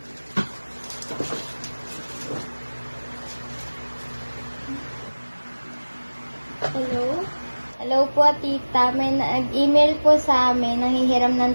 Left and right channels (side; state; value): both; inverted; correlation -1.00